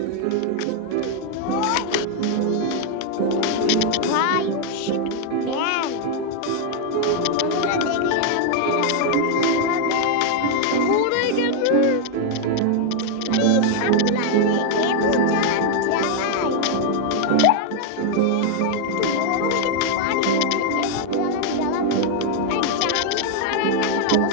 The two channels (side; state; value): both; different; correlation 0.00